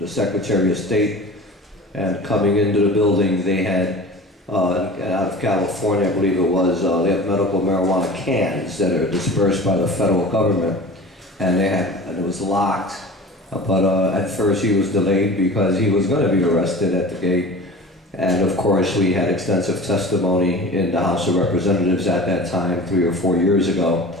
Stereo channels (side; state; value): both; normal; correlation 0.38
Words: Secretary of State, and coming into the building they had out of California, I believe it was, they have medical marijuana cans that are dispersed by the federal government, and it was locked. But at first he was delayed because he was going to be arrested at the gate. And of course we had extensive testimony in the House of Representatives at that time, 3 or 4 years ago.